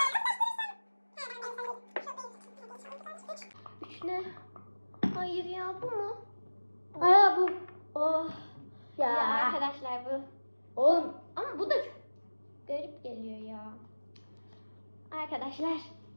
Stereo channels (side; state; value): both; inverted; correlation -1.00